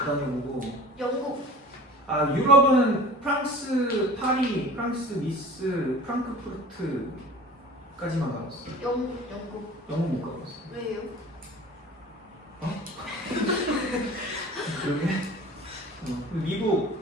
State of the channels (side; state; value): both; normal; correlation 0.42